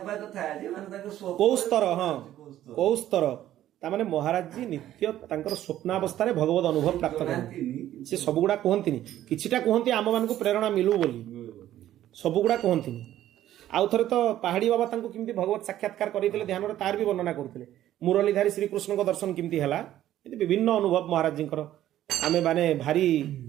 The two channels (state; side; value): quieter; left; 12.7 dB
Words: कथा जे माने ताको स्वप्न को स्तर हां को स्तर ता माने महाराज जी नित्य तांकर स्वप्नावस्था रे भगवत अनुभव प्राप्त करन से सब गुडा कहंतिनी किछिटा कहंती आम मान को प्रेरणा मिलू बोली सब गुडा कहंतिनी आउ थरे तो पहाड़ी बाबा तांको किमती भगवत साक्षात्कार करितले ध्यान रे तार भी वर्णना करथिले मुरलीधारी श्री कृष्ण को दर्शन किमती हला विभिन्न अनुभव महाराज जी आमे माने भारी